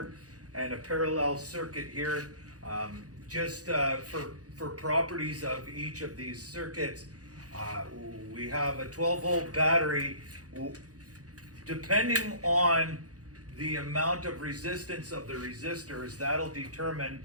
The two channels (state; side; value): late; left; 0.67 ms